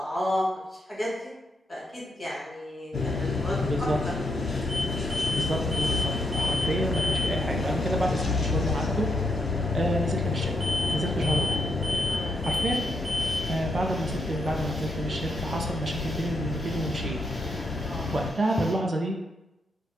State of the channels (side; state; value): both; normal; correlation 0.78